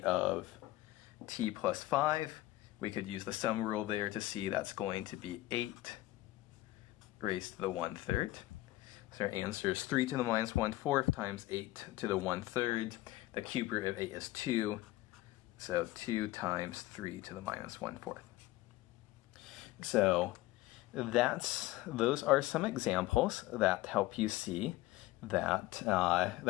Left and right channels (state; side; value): quieter; right; 17.5 dB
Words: of t plus 5. We could use the sum rule there to see that's going to be 8 raised to the 1/3. So our answer is 3 to the minus 1/4 times 8 to the 1/3. The cube root of 8 is 2, so 2 times 3 to the minus 1/4. So those are some examples that help you see that